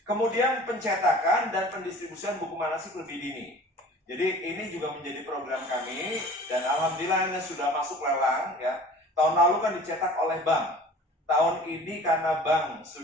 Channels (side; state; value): both; normal; correlation 0.45